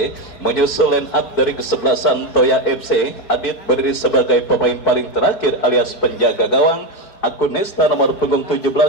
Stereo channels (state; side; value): late; right; 4.2 ms